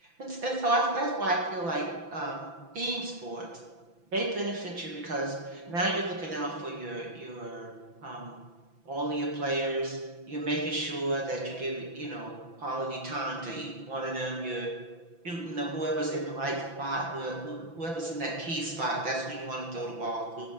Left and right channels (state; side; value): late; left; 5.9 ms